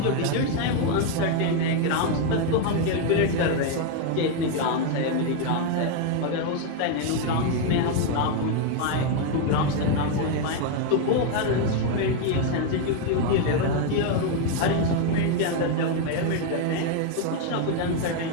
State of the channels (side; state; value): both; different; correlation 0.01